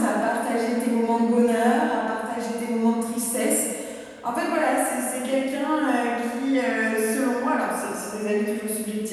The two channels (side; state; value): both; identical; correlation 1.00